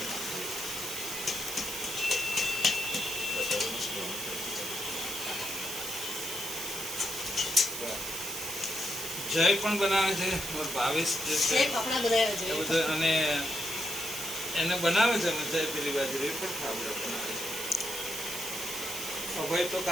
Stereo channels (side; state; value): right; noise; hiss, 5 dB below the sound